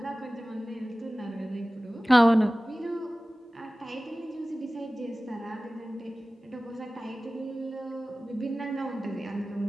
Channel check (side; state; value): both; normal; correlation 0.97